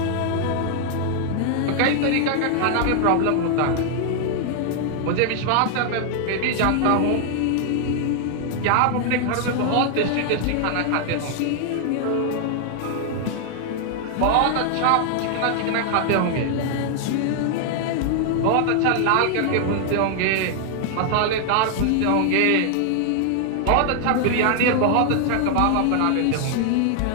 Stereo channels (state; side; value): different; both; correlation 0.00